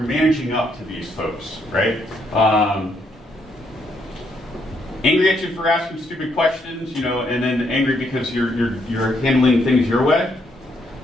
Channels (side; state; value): both; normal; correlation 0.74